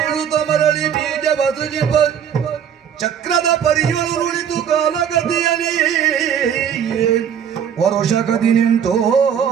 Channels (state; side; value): quieter; left; 8.4 dB